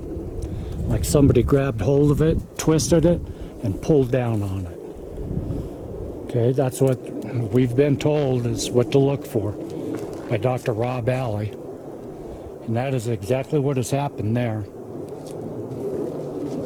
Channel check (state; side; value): identical; both; correlation 1.00